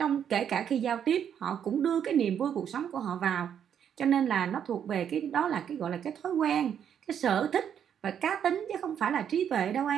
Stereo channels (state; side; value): quieter; left; 8.7 dB